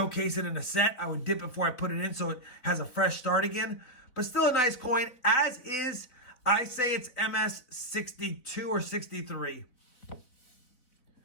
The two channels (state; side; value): late; right; 4.2 ms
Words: it in a set, I would dip it before I put it in so it has a fresh start again. But still a nice coin, as is. I say it's MS62 or 63.